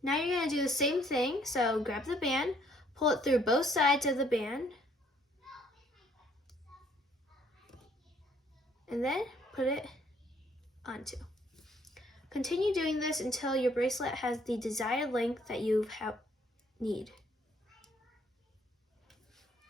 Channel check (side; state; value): both; normal; correlation 0.65